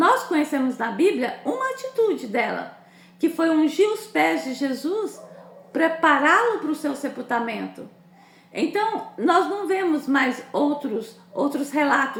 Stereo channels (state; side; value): identical; both; correlation 1.00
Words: conhecemos na Bíblia uma atitude dela, que foi ungir os pés de Jesus, prepará-lo para o seu sepultamento. Então, nós não vemos mais outros